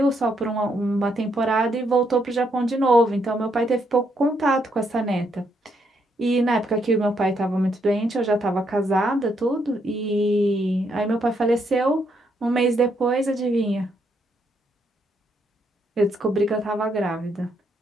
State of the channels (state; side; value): normal; both; correlation 0.75